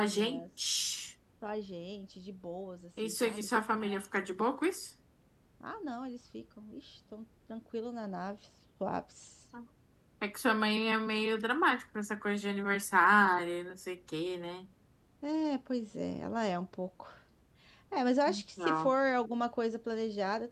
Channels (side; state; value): both; identical; correlation 1.00